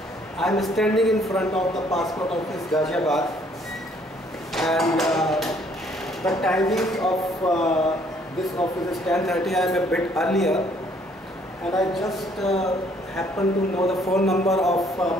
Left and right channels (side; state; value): both; normal; correlation 0.63